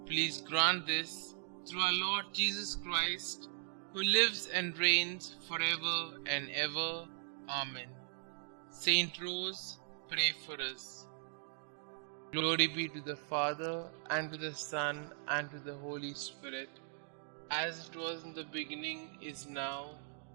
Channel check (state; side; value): silent; left; digital silence